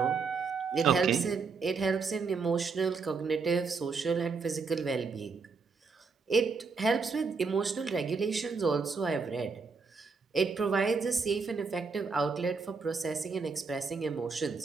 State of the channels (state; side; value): quieter; left; 4.8 dB